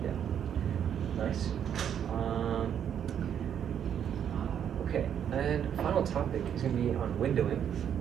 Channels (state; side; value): quieter; left; 8.9 dB